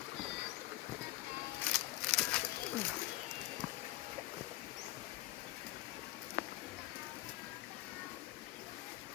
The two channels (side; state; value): right; quieter; 17.7 dB